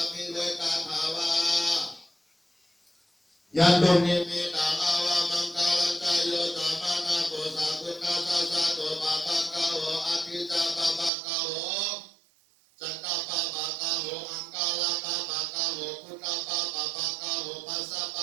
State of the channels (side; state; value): left; drops out; at 11.1 s